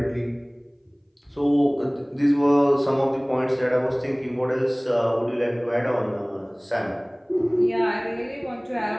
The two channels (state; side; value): identical; both; correlation 1.00